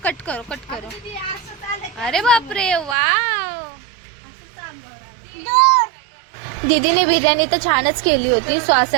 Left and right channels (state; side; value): drops out; left; at 3.0 s